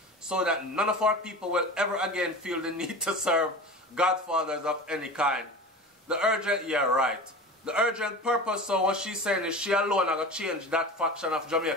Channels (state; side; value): normal; both; correlation 0.33